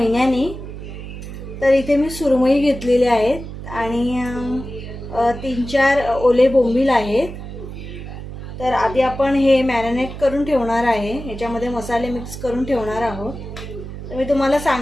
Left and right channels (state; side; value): noise; right; hum, 10 dB below the sound